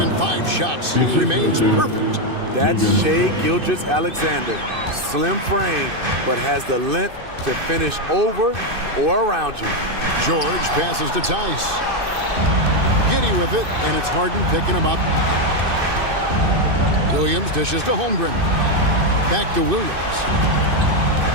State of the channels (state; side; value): late; left; 2.6 ms